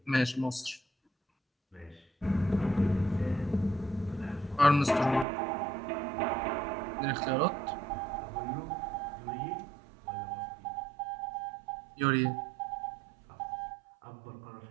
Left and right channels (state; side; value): drops out; left; at 5.2 s